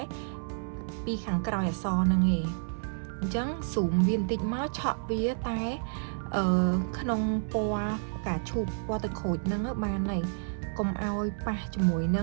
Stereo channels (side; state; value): left; silent; 58 dB below the other